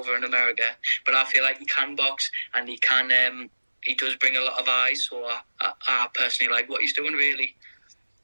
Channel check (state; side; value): inverted; both; correlation -1.00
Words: in America, but I feel like he can box, and he does bring a lot of eyes. So I personally like what he's doing, really.